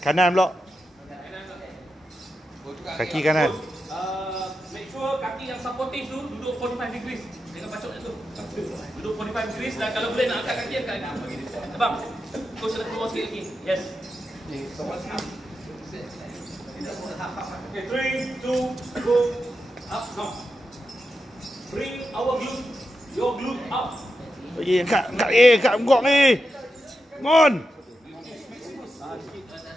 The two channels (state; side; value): normal; both; correlation 0.88